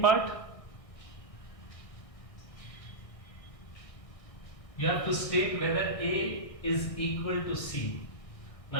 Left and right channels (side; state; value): right; late; 1.6 ms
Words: part, you have to state whether A is equal to C.